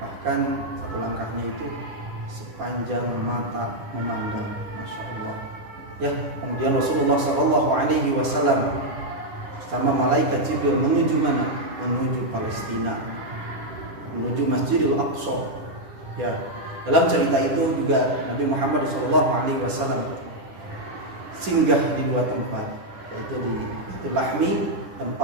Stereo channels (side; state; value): left; late; 10 ms